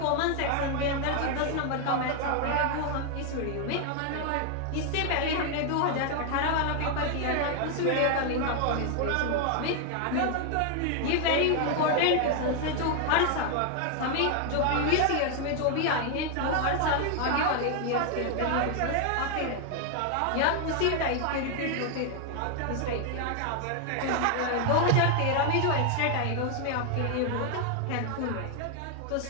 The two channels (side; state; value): both; different; correlation 0.00